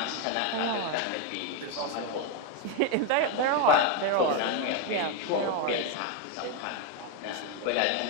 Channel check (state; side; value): different; both; correlation 0.02